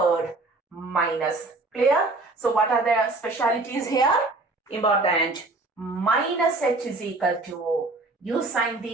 minus. Clear? So what are the specialities here? Important. Minus h is equal to u sine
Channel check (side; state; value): left; quieter; 3.2 dB